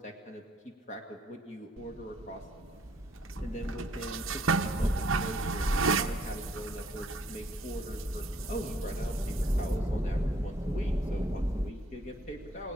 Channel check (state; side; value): normal; both; correlation 0.64